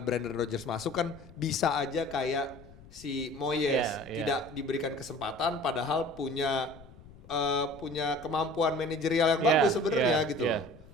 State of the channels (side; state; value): left; noise; rumble, 21 dB below the sound